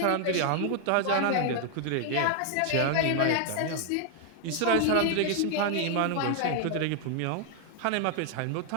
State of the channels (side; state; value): both; different; correlation 0.00